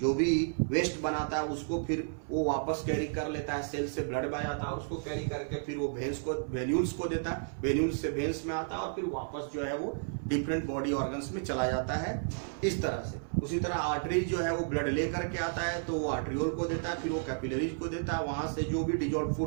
जो भी वेस्ट बनाता है उसको फिर वो वापस कैरी कर लेता है, सेल से ब्लड बह जाता है, और उसको कैरी करके फिर वो भेंस को वेन्यूल्स को देता है, वेन्यूल्स से भेंस में आता है, और फिर वापस जो है वो डिफरेंट बॉडी ऑर्गन्स में चला जाता है इस तरह से। उसी तरह आर्टरी जो है वो ब्लड ले करके आता है, तो वो आर्टरियोल को देता है, फिर वो कैपिलरीज को देता है। वहां से जो भी डिजोल्व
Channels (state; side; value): silent; left; 56 dB below the other